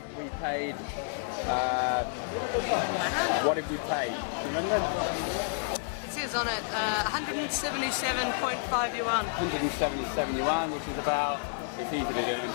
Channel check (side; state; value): right; silent; 58 dB below the other